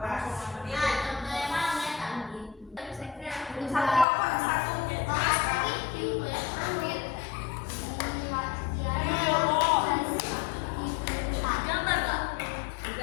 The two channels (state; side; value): drops out; right; at 4.0 s